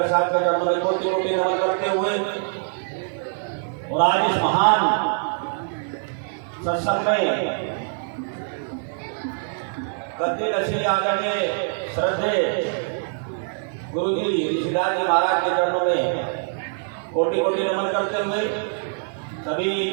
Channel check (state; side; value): silent; left; digital silence